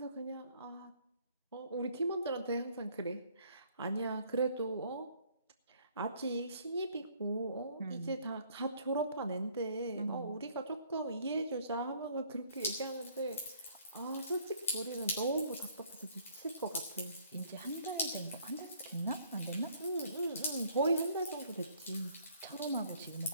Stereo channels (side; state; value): both; inverted; correlation -0.61